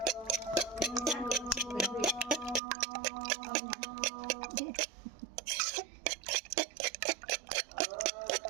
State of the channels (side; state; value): left; drops out; at 2.6 s